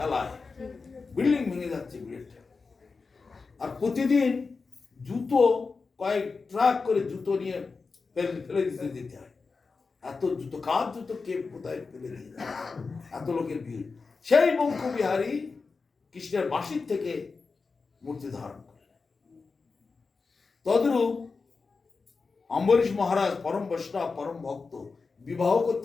বিল্ডিং ভেঙে যাচ্ছে ভিড়ের ঠেলায়। আর প্রতিদিন জুতো কয়েক ট্রাক করে জুতো নিয়ে ফেলে দিতে হয়। এত জুতো, কার জুতো কে কোথায় ফেলে দিয়ে যায়, এত লোকের ভিড়। সেই বঙ্কবিহারী কৃষ্ণের বাঁশির থেকে মূর্তি ধারণ করলেন। তদ্রূপ অম্বরীশ মহারাজ পরম বৈষ্ণব, পরম ভক্ত, বিবাহ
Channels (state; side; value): quieter; right; 4.5 dB